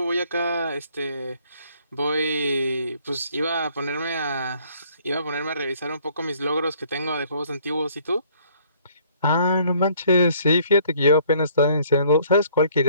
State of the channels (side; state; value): both; inverted; correlation -0.60